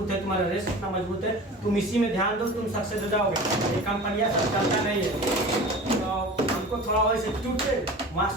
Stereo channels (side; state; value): both; normal; correlation 0.37